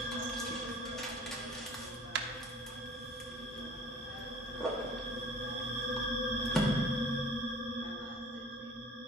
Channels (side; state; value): both; normal; correlation 0.47